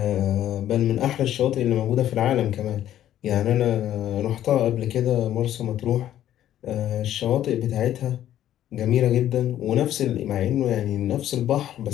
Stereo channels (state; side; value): quieter; right; 11.9 dB